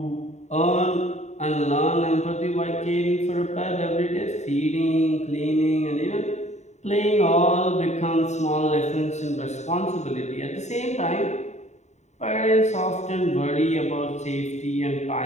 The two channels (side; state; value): right; late; 0.33 ms